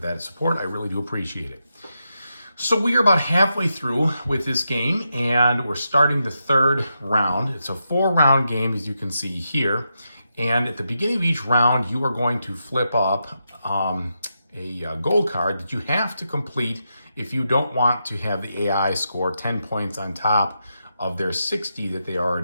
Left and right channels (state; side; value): inverted; both; correlation -0.85